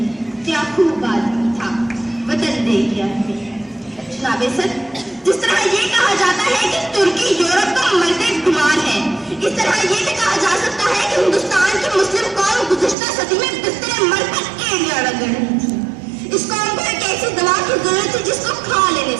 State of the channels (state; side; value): drops out; left; at 13.0 s